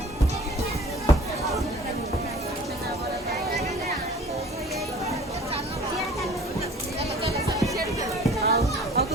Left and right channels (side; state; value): both; normal; correlation 0.46